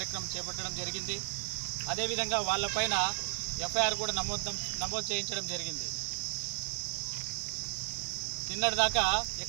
చేపట్టడం జరిగింది. అదేవిధంగా వాళ్ళపైన ఎఫ్ఐఆర్ కూడా నమోదు చేయించడం జరిగింది. నిన్నటిదాకా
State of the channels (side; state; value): left; silent; 55 dB below the other